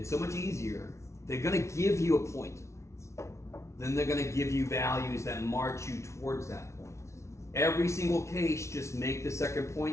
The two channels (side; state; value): right; late; 0.13 ms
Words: so much easier. They're going to give you a point. Then they're going to give you values that march you towards that point. Every single case, just make the second